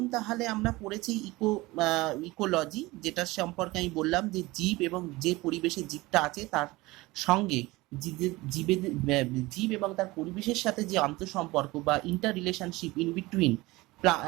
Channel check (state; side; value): quieter; left; 20.9 dB